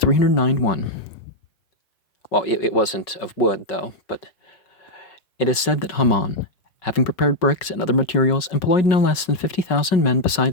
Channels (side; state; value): right; late; 5.3 ms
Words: Well, it wasn't of wood, though, but it is said that Haman, having prepared bricks and other materials, employed no less than 50,000 men